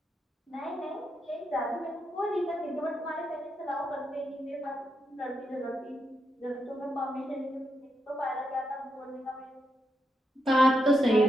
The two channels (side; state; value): both; normal; correlation 0.83